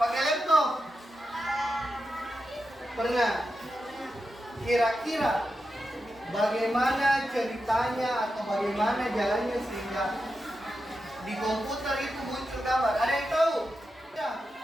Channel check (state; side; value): normal; both; correlation 0.89